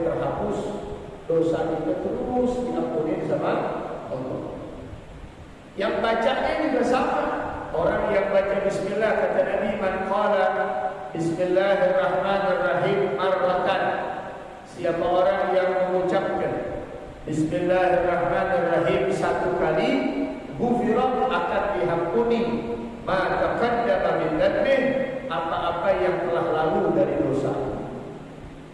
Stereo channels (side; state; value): both; identical; correlation 1.00